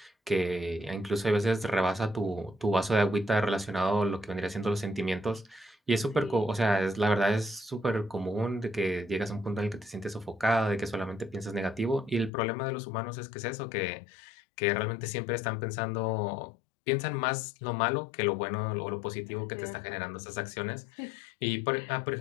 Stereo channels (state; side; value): drops out; right; at 12.3 s